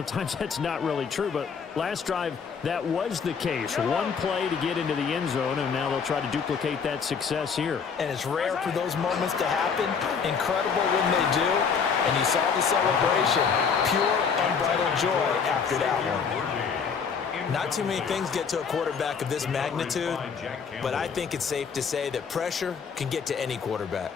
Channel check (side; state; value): right; quieter; 6.1 dB